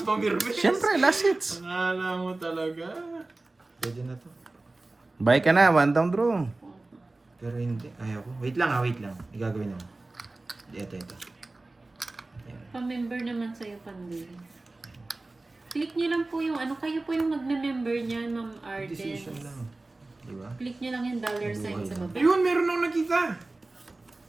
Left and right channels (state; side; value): quieter; left; 3.1 dB